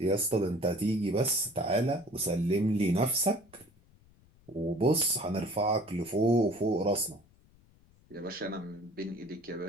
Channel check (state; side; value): noise; left; rumble, 29 dB below the sound